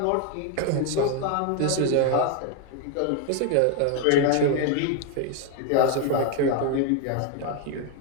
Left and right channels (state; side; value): different; both; correlation 0.01